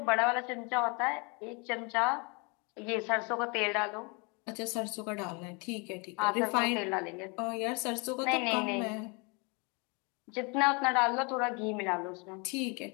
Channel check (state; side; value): quieter; right; 31.4 dB